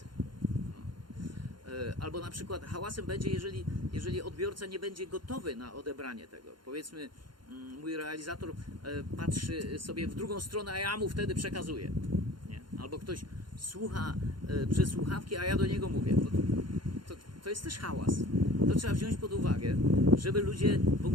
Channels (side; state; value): left; late; 0.72 ms